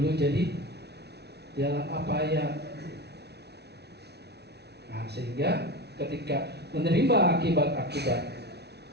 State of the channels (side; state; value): left; late; 0.49 ms